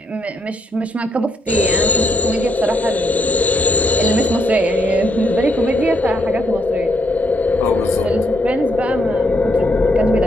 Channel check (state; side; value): normal; both; correlation 0.76